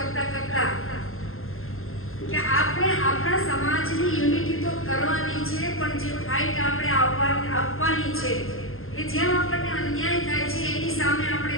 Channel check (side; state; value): right; late; 0.61 ms